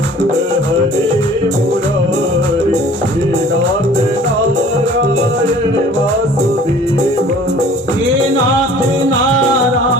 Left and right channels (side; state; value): both; normal; correlation 0.49